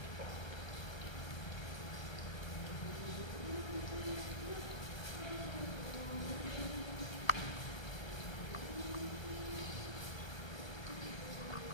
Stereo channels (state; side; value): late; right; 1.2 ms